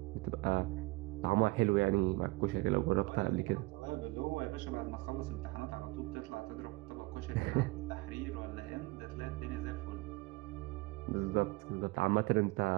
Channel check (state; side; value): quieter; left; 22.9 dB